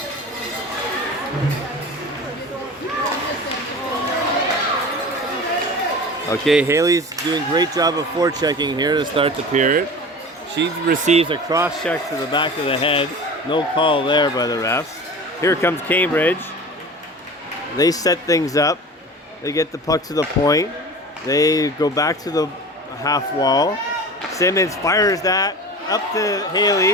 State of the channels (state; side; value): normal; both; correlation 0.35